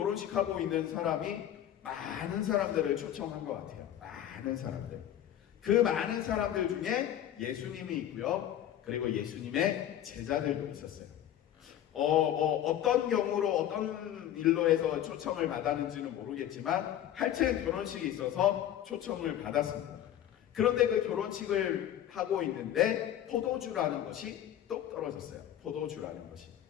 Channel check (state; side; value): quieter; right; 11.3 dB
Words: 하고 있는 사람이 많은 사람들을 초청한 것 같아요. 많은 사람들. 그 많은 사람들 중에 예수님이 있고요. 그리고 예수님의 제자들도 있었어요. 어떤 경우로 어떤 일로 해서 초청을 받았는지는 모르겠지만 하여튼 결혼식이 있어서 초청을 받았습니다. 그런데 그 결혼식을 하고 있는데 포도주라는 것이 똑 떨어졌어요. 포도주라는 것이.